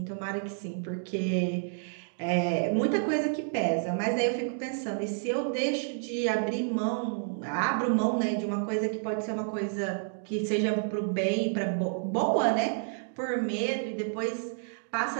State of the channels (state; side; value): silent; left; digital silence